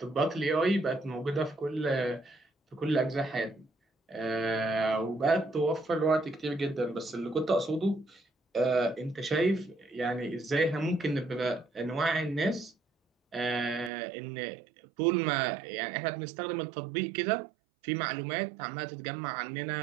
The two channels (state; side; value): drops out; left; at 13.9 s